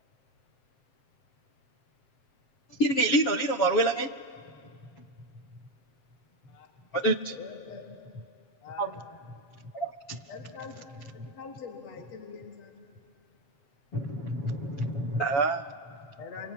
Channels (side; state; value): right; late; 7.7 ms